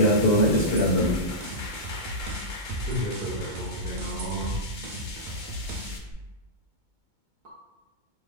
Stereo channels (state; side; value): late; left; 2.2 ms